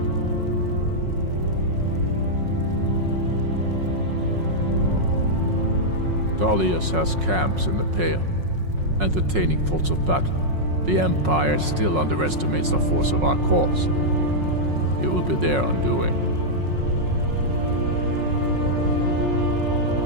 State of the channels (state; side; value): late; left; 5.5 ms